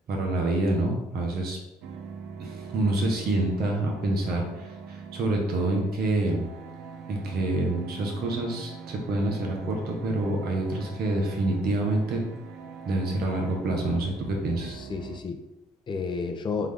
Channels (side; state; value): both; normal; correlation 0.66